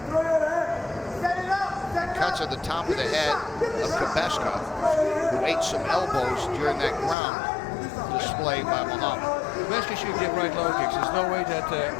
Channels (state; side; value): drops out; right; at 7.2 s